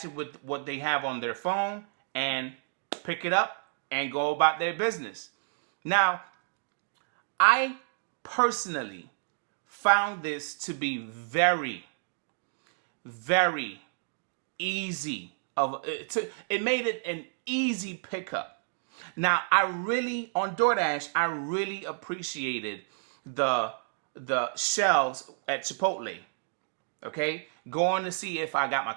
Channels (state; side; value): silent; left; digital silence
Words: it with what they have on their phone and pick it up and go about their business. Now, I personally found this to be very, very easy. It made it an easy pickup. Now, on DoorDash, I really appreciated the shelves at Chipotle. Okay? Going to see if I got my